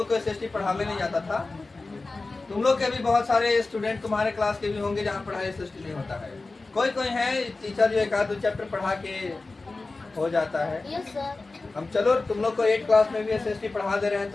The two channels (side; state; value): right; quieter; 3.5 dB